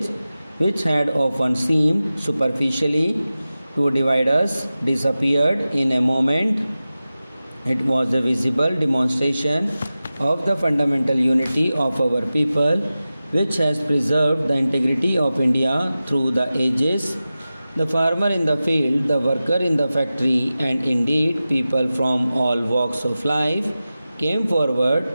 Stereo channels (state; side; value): inverted; both; correlation -0.95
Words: which had often seemed superficially to divide us, disappeared in a moment. It was a visible demonstration of the fundamental unity of our people, which has preserved the integrity of India through the ages. The farmer in the field, the worker in the factory, and indeed people from all walks of life came forward